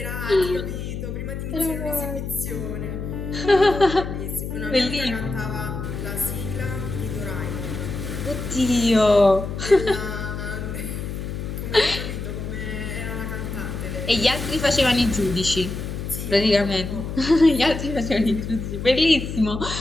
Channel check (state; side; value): noise; left; hum, 6 dB below the sound